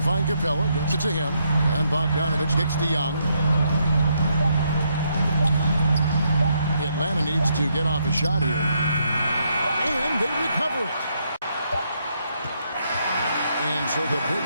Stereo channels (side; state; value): both; inverted; correlation -0.76